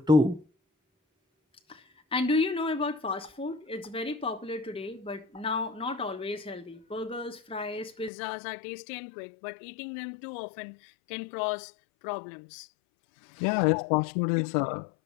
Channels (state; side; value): drops out; right; at 8.1 s